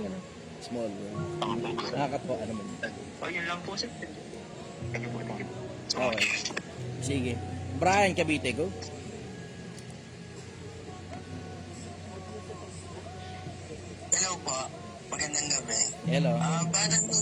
ano? Small world. Nakakatuwa naman. Yun lang po sir. Thank you po. Okay. Sige. Brian Cavite, go. Hello po. Magandang gabi. Hello. Batang po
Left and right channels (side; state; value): both; identical; correlation 1.00